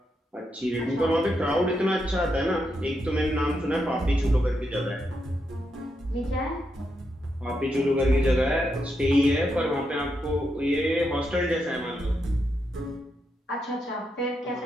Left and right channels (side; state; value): both; normal; correlation 0.83